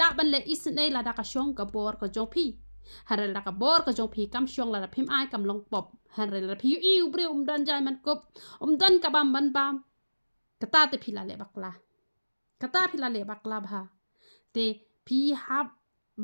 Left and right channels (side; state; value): both; inverted; correlation -1.00